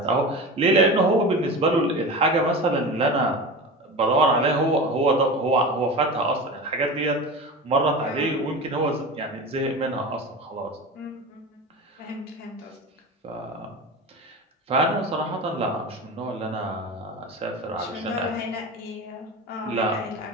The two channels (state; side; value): normal; both; correlation 0.29